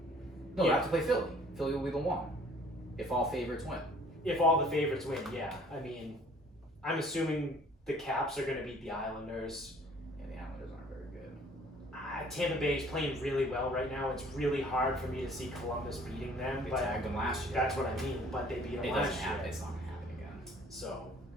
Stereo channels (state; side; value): normal; both; correlation 0.55